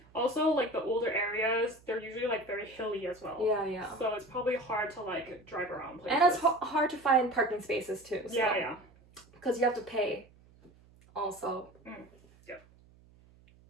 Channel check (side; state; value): right; noise; hum, 27 dB below the sound